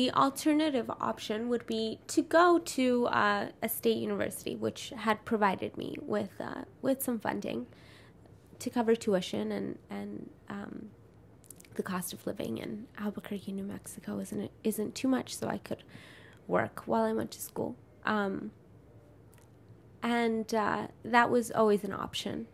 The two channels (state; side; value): identical; both; correlation 1.00